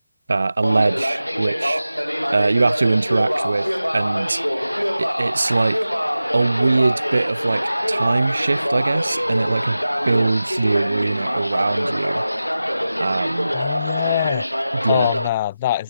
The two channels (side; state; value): both; inverted; correlation -0.93